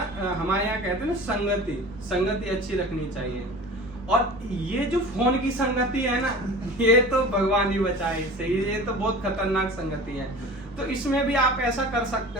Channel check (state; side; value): normal; both; correlation 0.38